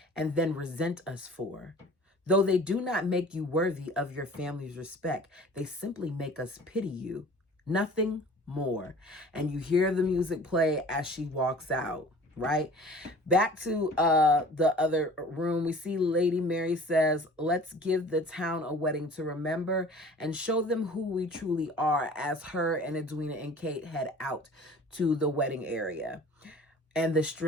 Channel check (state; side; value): normal; both; correlation 0.45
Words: and then resent us for. Though they do not make you worthy of your family's respect, they simply make us pity you. Nothing more. And you hear the music play as she walks out, right? Back to the other room, we see Lady Mary says, let's give the town a wedding to remember and show them who we truly are, as her and Edwina and Kate head out to the wedding area. And the